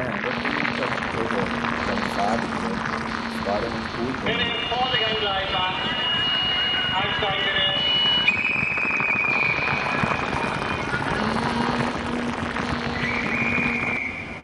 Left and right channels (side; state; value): both; identical; correlation 1.00